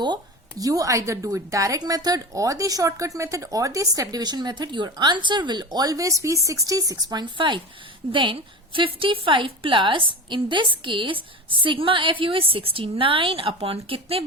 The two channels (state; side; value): normal; both; correlation 0.28